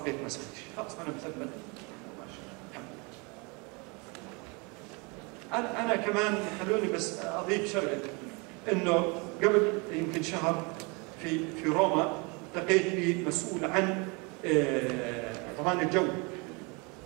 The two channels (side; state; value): left; quieter; 30.0 dB